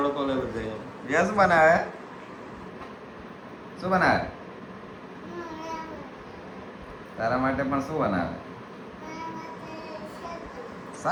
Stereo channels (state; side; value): identical; both; correlation 1.00